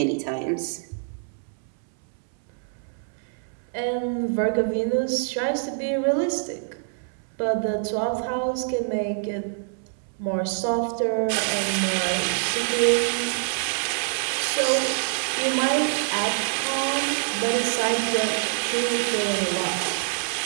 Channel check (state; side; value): silent; left; 61 dB below the other